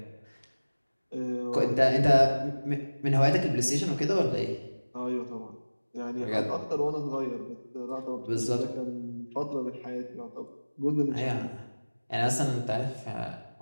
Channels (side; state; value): both; inverted; correlation -1.00